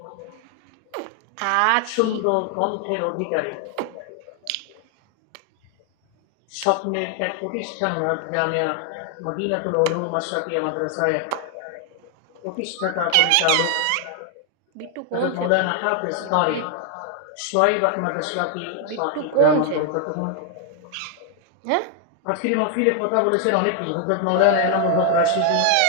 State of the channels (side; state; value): both; different; correlation 0.00